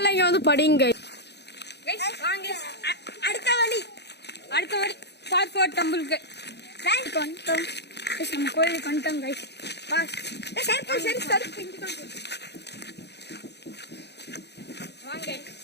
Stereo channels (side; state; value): right; late; 0.49 ms